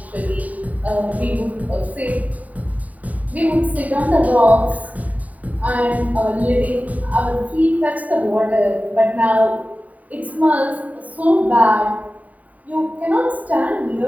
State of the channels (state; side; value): late; left; 0.072 ms